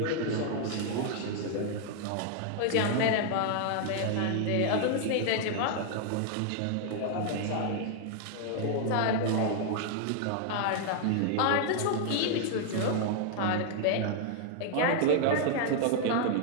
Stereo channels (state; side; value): different; both; correlation 0.00